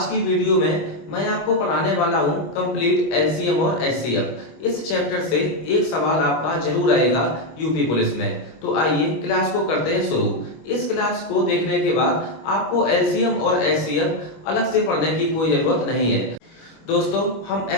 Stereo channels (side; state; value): right; late; 25 ms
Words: की वीडियो में मैं आपको पढ़ाने वाला हूं कंप्लीट एलसीएम और एचसीएफ। इस चैप्टर से एक सवाल आपका जरूर आएगा यूपी पुलिस में। तो आइए क्लास को करते हैं शुरू। इस क्लास को देखने के बाद आपको एलसीएम और एचसीएफ अलग से पढ़ने की कोई जरूरत नहीं है। दोस्तों, हम